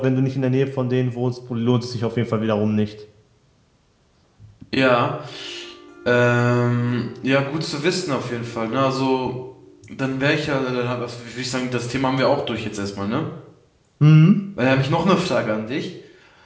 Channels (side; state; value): both; identical; correlation 1.00